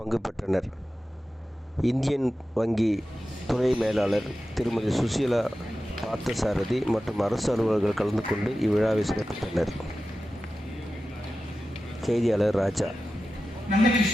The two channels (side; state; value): both; normal; correlation 0.94